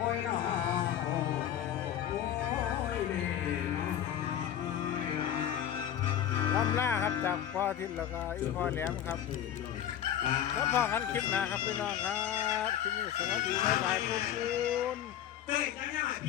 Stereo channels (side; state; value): right; quieter; 10.4 dB